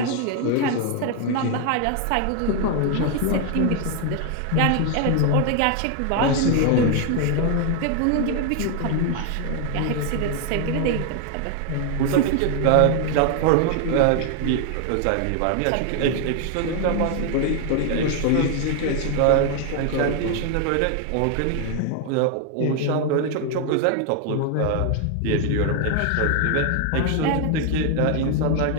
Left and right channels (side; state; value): both; different; correlation 0.00